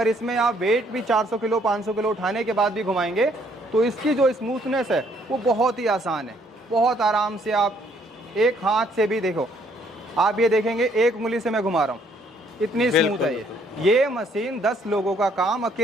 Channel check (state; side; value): normal; both; correlation 0.66